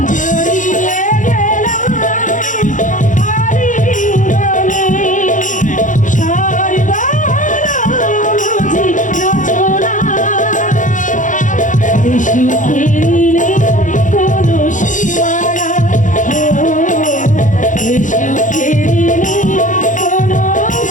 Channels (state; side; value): late; right; 0.37 ms